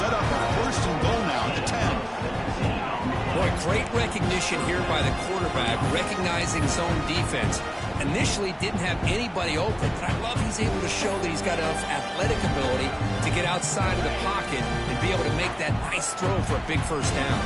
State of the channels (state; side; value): identical; both; correlation 1.00